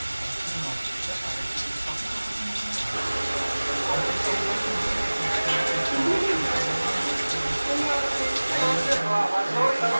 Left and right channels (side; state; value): both; inverted; correlation -1.00